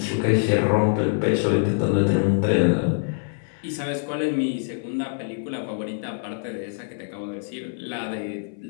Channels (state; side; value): silent; right; 58 dB below the other